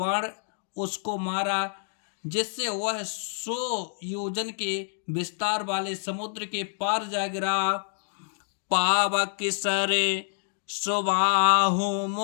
उसको मारा जिससे वह 100 योजन के विस्तार वाले समुद्र के पार जा गिरा। पावक सरे सुबाहु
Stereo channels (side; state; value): right; silent; digital silence